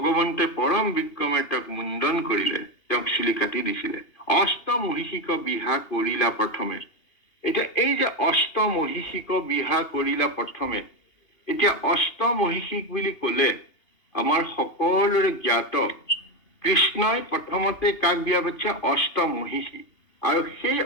পৰম বিক্ৰমে তেওঁক মুণ্ডন কৰিলে, তেওঁক চুলি কাটি দিছিলে। অষ্টমহিষিক বিহা কৰিলা প্ৰথমে। এতিয়া এই যে অষ্টমহিষিক বিহা কৰিলা প্ৰথমে, এতিয়া অষ্টমহিষিক বুলি কলে আমাৰ সকলোৰে জ্ঞাত কৃষ্ণই প্ৰথমতে কাক বিয়া পাতিছে? অষ্টমহিষী। আৰু সেই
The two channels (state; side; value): late; right; 2.8 ms